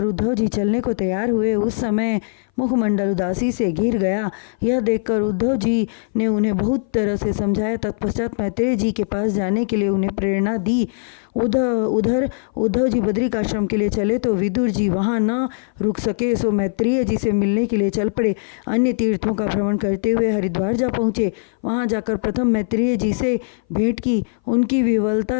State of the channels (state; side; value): silent; right; 60 dB below the other